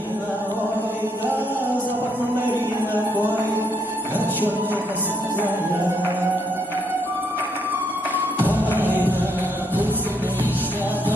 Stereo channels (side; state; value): both; normal; correlation 0.74